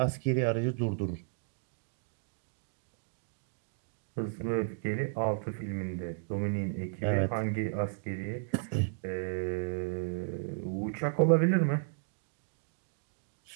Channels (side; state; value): left; silent; digital silence